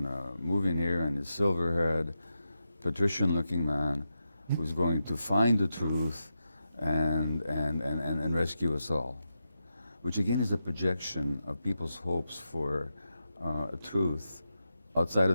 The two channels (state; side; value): inverted; both; correlation -0.88